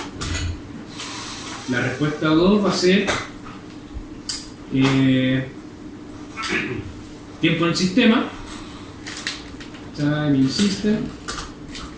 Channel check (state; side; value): identical; both; correlation 1.00